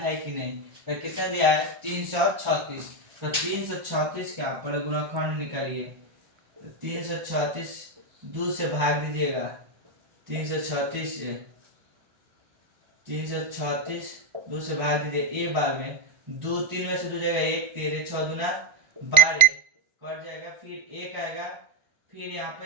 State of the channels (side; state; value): left; late; 1.4 ms